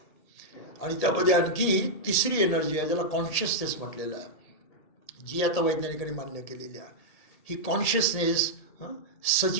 आणि त्यामध्ये आणखी तिसरी एनर्जी आहे ज्याला कॉन्शियसनेस म्हटलेलं आहे, जी आता वैज्ञानिकांनी मान्य केलेली आहे. ही कॉन्शियसनेस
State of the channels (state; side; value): late; right; 1.8 ms